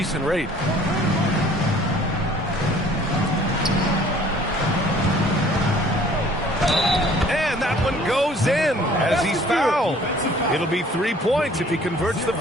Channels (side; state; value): both; normal; correlation 0.54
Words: rate. And that one goes in as he's fouled. It'll be 3 points if he converts the